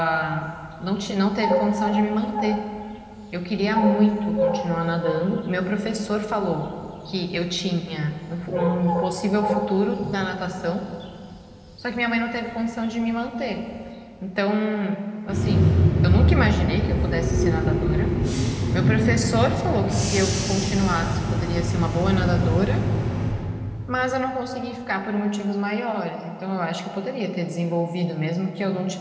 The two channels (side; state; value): both; identical; correlation 1.00